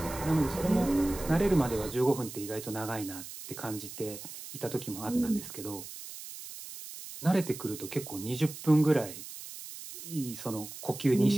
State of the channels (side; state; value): right; noise; hiss, 12 dB below the sound